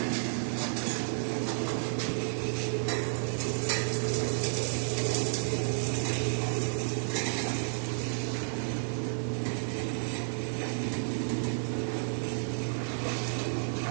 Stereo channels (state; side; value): silent; left; 57 dB below the other